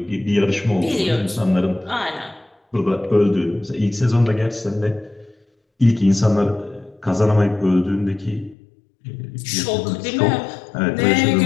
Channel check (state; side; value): drops out; right; at 8.6 s